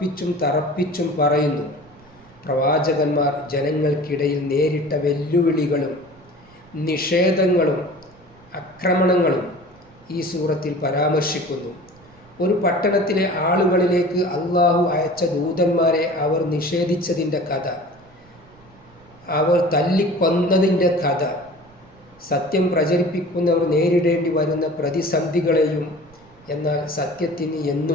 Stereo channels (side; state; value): right; noise; rumble, 27 dB below the sound